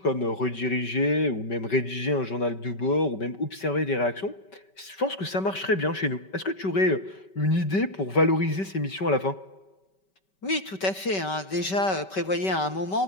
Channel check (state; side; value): late; right; 5.2 ms